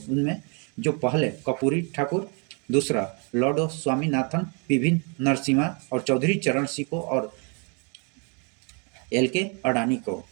जो पहले कर्पूरी ठाकुर, दूसरा लॉर्ड स्वामीनाथन, पीवी नरसिम्हा और चौधरी चरण सिंह को और LK अडानी को।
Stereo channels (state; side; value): quieter; left; 36.2 dB